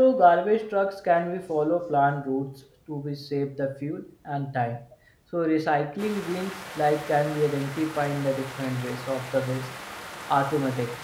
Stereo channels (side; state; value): both; identical; correlation 1.00